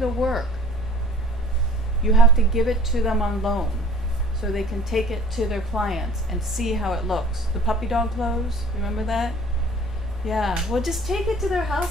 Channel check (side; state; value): both; normal; correlation 0.51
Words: work. You have to give it to them on loan so they can take it to their clients and see how it looks. The puppy dog clothes, remember that? Yeah, well just take it to their